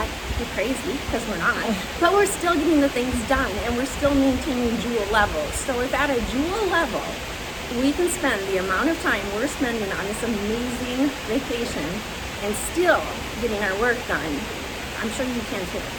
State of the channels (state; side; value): identical; both; correlation 1.00